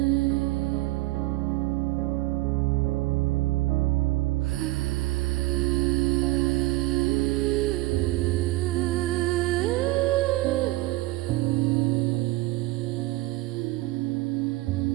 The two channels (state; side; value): quieter; left; 19.2 dB